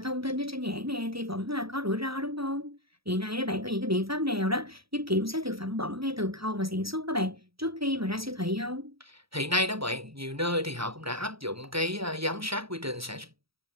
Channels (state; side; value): late; left; 0.76 ms